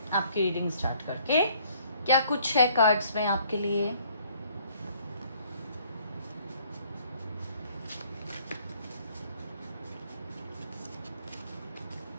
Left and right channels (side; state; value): both; inverted; correlation -0.61